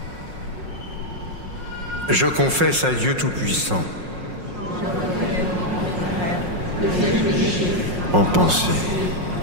Je confesse à Dieu Tout-Puissant, en pensée,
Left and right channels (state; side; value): late; left; 5.5 ms